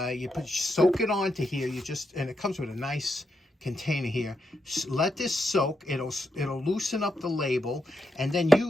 you soak it onto here. And it comes with a nice container here. Let this soak. It'll loosen up the label, and then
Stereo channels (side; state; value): both; normal; correlation 0.83